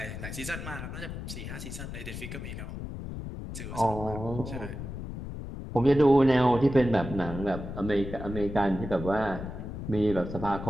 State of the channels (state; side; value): noise; left; rumble, 8 dB below the sound